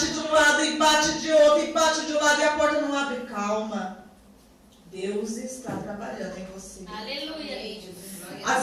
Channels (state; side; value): identical; both; correlation 1.00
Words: de um lado e bate de outro e bate de um lado e a porta não abre, calma. Deus está trabalhando em você. Aleluia.